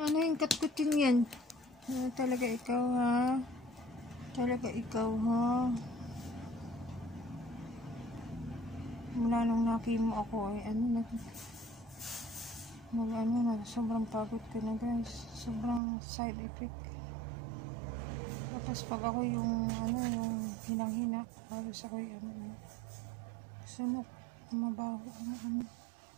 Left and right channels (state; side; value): drops out; left; at 15.8 s